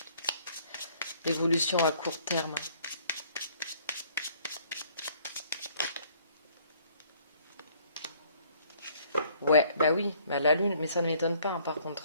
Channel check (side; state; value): both; inverted; correlation -0.61